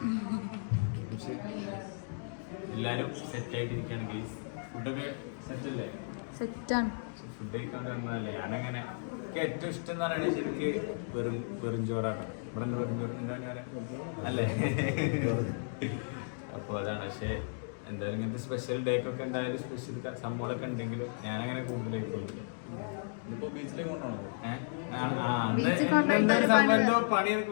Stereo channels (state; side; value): silent; right; digital silence